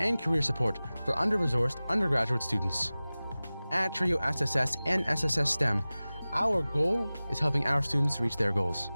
career support for under-resourced undergraduate students. At TRIO SSS and SSS STEM, our goal is helping our students reach their goals.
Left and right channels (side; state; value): both; inverted; correlation -0.98